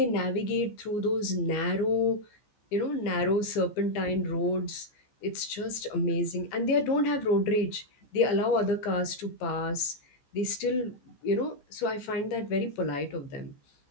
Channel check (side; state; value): right; late; 14 ms